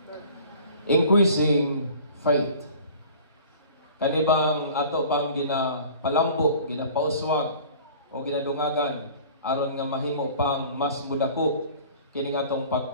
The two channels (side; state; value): both; inverted; correlation -0.46